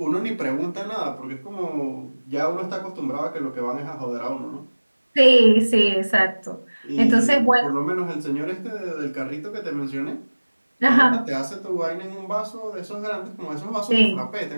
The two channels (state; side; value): inverted; both; correlation -1.00